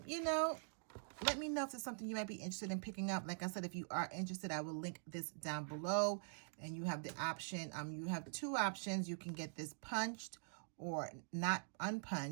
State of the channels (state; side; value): silent; left; digital silence